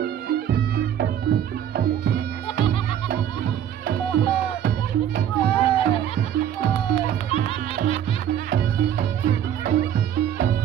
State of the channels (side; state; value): left; quieter; 10.0 dB